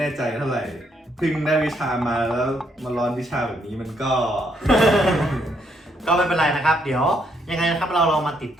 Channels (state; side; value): normal; both; correlation 0.73